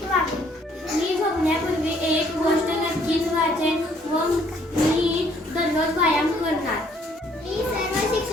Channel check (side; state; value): both; normal; correlation 0.64